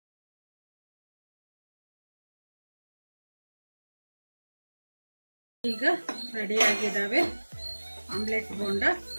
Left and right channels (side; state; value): both; inverted; correlation -1.00